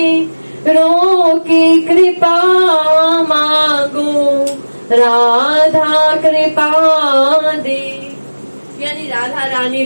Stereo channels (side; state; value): both; inverted; correlation -1.00